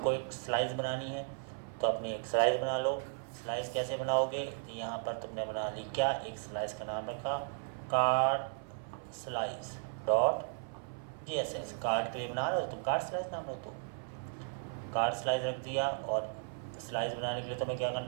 एक स्लाइस बनानी है, तो अपनी एक स्लाइस बना लो। स्लाइस कैसे बनाओगे, यहाँ पर तुमने बना ली क्या, एक स्लाइस का नाम रखा card slice dot JSS। Card के लिए बना रहे हो तुम, कार्ड स्लाइस नाम रखो, कार्ड स्लाइस रख दिया। और स्लाइस बनाने के लिए तुम्हें क्या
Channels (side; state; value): left; silent; 54 dB below the other